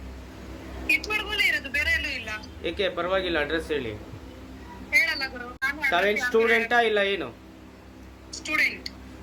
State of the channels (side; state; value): both; identical; correlation 1.00